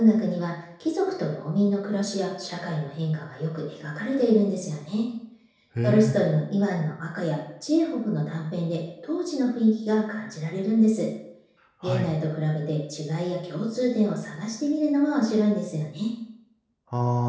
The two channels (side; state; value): both; identical; correlation 1.00